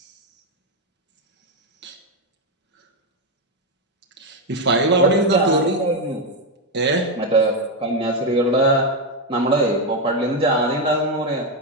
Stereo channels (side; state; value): both; normal; correlation 0.06